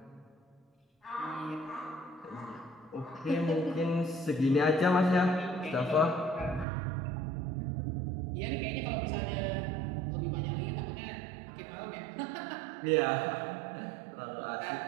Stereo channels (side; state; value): left; drops out; at 6.7 s